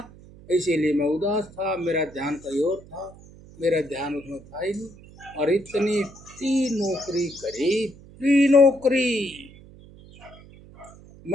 इसीलिए मैं उदास था, मेरा ध्यान कहीं और था, मेरा ध्यान उसमें था ही नहीं। और इतनी नौकरी करी, नौकरी,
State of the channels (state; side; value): noise; right; hum, 21 dB below the sound